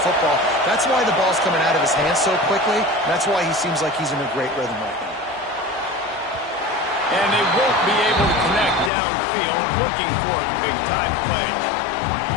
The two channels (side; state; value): right; drops out; at 8.9 s